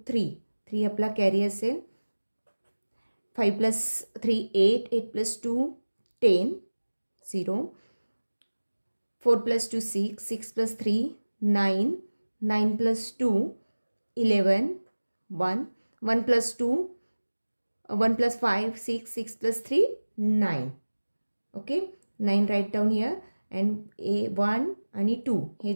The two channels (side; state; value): both; inverted; correlation -1.00